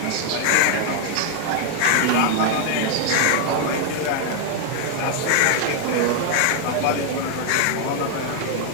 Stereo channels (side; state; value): both; different; correlation 0.00